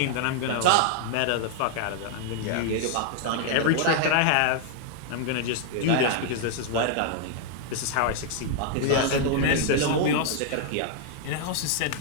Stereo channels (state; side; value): different; both; correlation 0.00